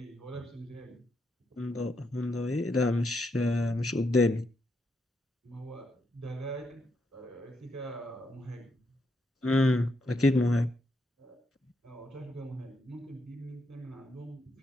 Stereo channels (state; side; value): normal; both; correlation 0.79